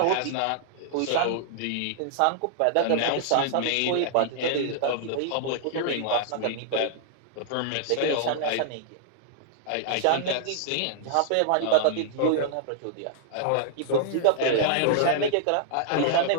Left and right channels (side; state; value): both; different; correlation -0.01